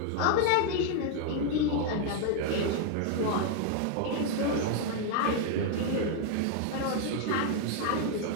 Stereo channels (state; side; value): different; both; correlation 0.00